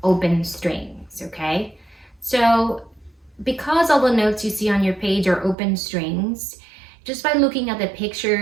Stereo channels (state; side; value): drops out; left; at 5.6 s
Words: open strings, okay? So because all the notes you see on your page are open strings, just by looking at the